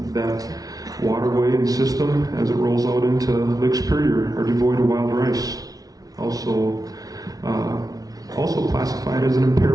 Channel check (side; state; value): left; late; 0.18 ms